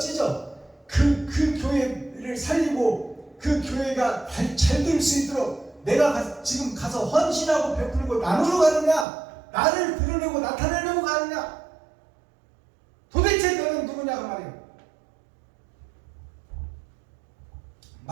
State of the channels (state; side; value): drops out; left; at 9.1 s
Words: 그 교회를 살리고 그 교회가 잘 될 수 있도록 내가 지금 가서 헌신하고 베풀고 나누러 가느냐 나를 드러내고 나타내려고 가느냐? 도대체 너는 누구냐 그 말이에요.